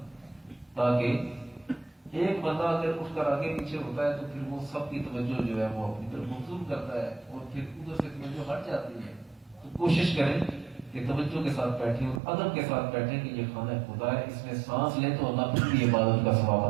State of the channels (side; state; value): left; drops out; at 12.2 s